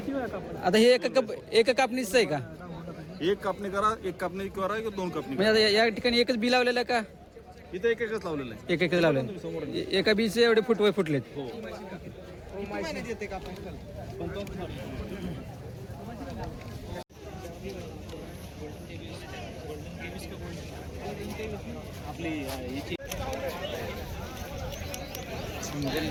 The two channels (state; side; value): identical; both; correlation 1.00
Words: वेळा कापड आता हे एका कापणीच आहे का? एक कापणी करा एक कापणी करा किंवा दोन कापणी म्हणजे आता या ठिकाणी एकच बी लावलेलं आहे का? करा. इथं एकच लावलेलं आहे. एकच लावलेलं एका बीचे एवढे फुटलेत. हो